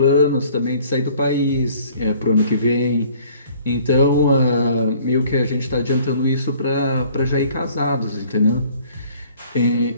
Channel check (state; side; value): inverted; both; correlation -0.55